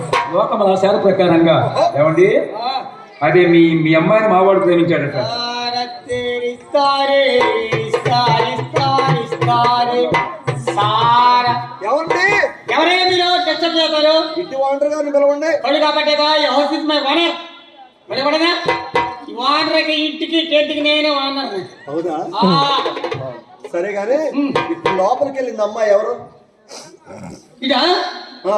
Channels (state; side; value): identical; both; correlation 1.00